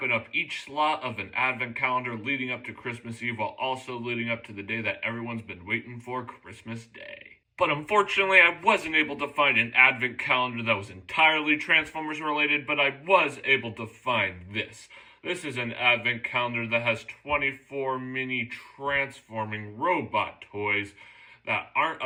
up each slot of an advent calendar leading up to Christmas Eve while also leading up to the day that everyone's been waiting for, Christmas Day. But unfortunately, I wasn't able to find an advent calendar that was entirely Transformers related, but I was able to find this. This is an advent calendar that has 24 mini transforming robot toys that aren't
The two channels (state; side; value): identical; both; correlation 1.00